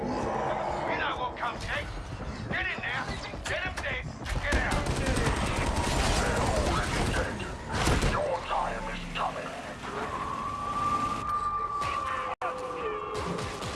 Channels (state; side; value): identical; both; correlation 1.00